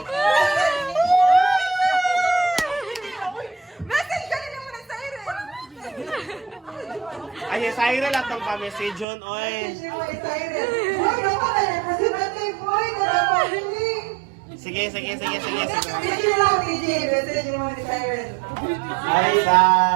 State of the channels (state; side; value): drops out; left; at 9.1 s